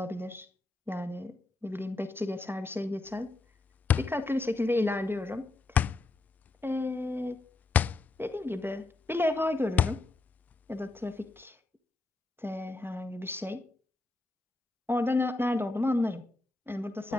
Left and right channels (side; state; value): right; quieter; 3.3 dB